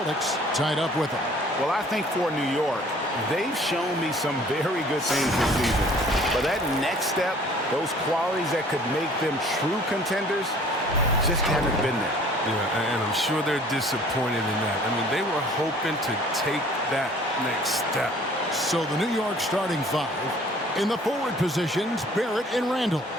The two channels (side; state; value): both; normal; correlation 0.53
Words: tied up with them. Well, I think for New York, they've shown me some very good things this season. But that next step, those qualities that could make them true contenders, just haven't been there. Yeah, and I'm sure they're disappointed in that. I mean, they were hoping to take that next step. So the New York starting five. In the forward positions, Barrett and Randle.